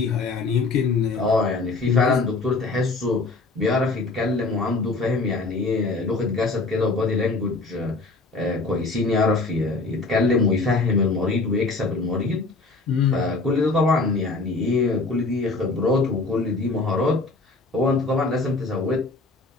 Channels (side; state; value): right; quieter; 3.6 dB